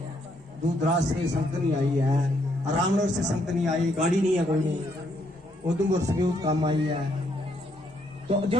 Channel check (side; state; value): both; normal; correlation 0.73